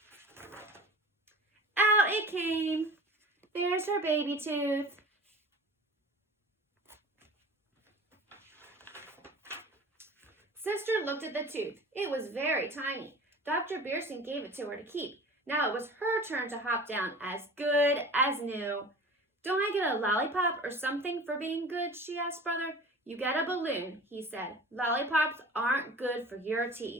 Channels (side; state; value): both; normal; correlation 0.39